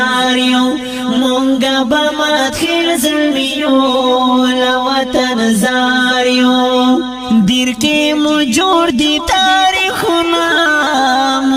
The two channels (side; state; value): left; noise; hum, 30 dB below the sound